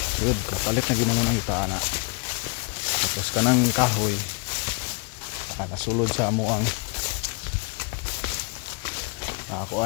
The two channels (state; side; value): quieter; right; 30.6 dB